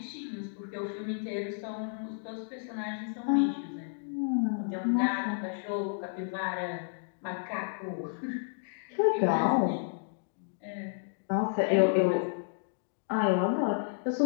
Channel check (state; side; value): silent; right; digital silence